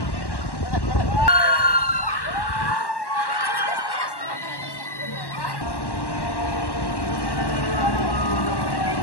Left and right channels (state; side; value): late; right; 1.1 ms